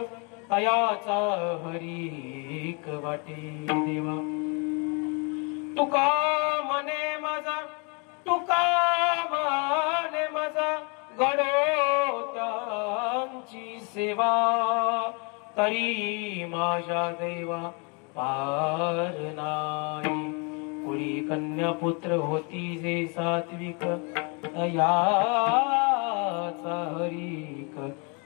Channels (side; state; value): right; quieter; 34.0 dB